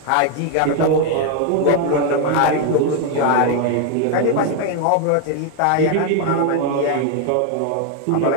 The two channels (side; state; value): both; different; correlation 0.01